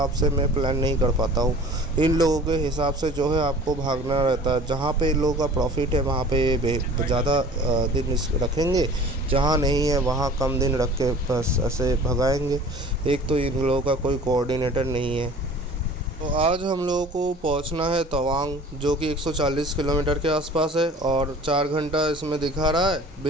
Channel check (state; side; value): normal; both; correlation 0.45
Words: से मैं प्लान नहीं कर पाता हूँ। इन लोगों के हिसाब से जो है आपको भागना रहता है। जहाँ पे इन लोगों का प्रॉफिट है वहाँ पे ज़्यादा दिन रखेंगे, जहाँ नहीं है वहाँ कम दिन रख के बस ऐसे भगाएंगे। एक तो इन लोगों का कोई कोऑर्डिनेटर नहीं है। तो आज हम लोगों को पहुंचना है तवांग, जो कि 140 किलोमीटर के आसपास है, और 4 घंटा इसमें दिखा रहा है